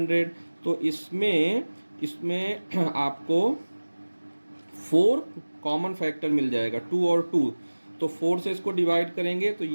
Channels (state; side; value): inverted; both; correlation -1.00